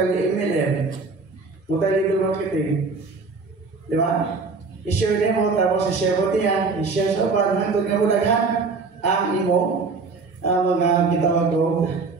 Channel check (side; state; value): left; quieter; 4.3 dB